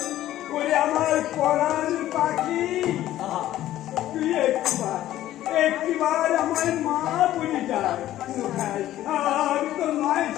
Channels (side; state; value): right; quieter; 13.6 dB